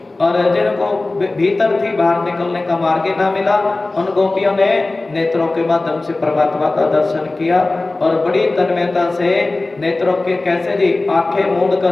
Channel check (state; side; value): quieter; right; 3.1 dB